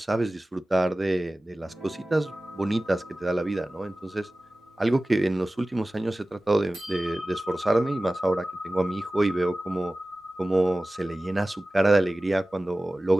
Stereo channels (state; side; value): normal; both; correlation 0.97